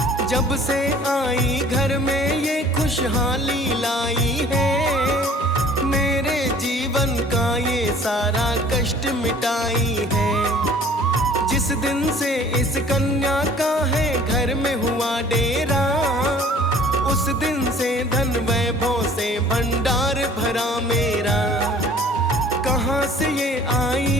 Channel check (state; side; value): normal; both; correlation 0.51